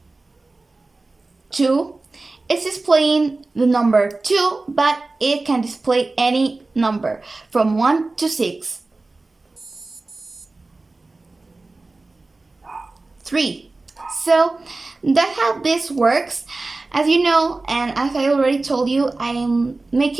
2. It's displaying the number 2, but it can display any number from 1 to 6. 3. So that's how this works. As you know, and as I already told you, I'm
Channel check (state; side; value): quieter; left; 3.3 dB